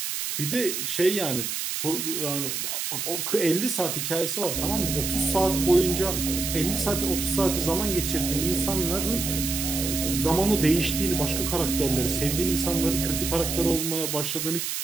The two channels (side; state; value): right; noise; hiss, 3 dB below the sound